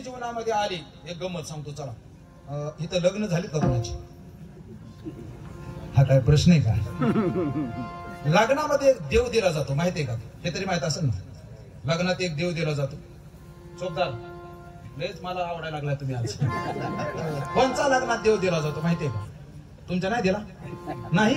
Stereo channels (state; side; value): identical; both; correlation 1.00